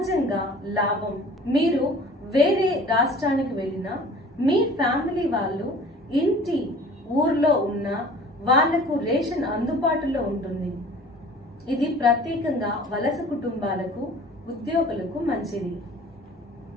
లాభం. మీరు వేరే రాష్ట్రానికి వెళ్ళినా మీ ఫ్యామిలీ వాళ్ళు ఇంటి ఊర్లో ఉన్న వాళ్లకు రేషన్ అందుబాటులో ఉంటుంది. ఇది ప్రత్యేకంగా వలస కుటుంబాలకు, ఉద్యోగులకు మంచిది.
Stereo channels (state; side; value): normal; both; correlation 0.46